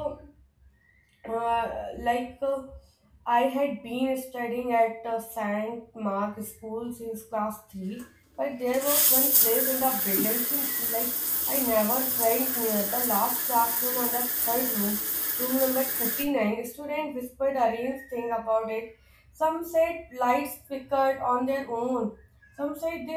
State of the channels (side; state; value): both; identical; correlation 1.00